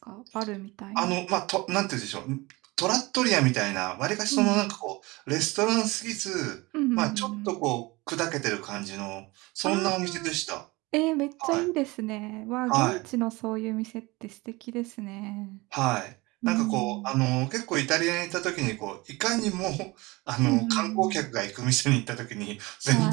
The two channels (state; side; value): quieter; left; 22.8 dB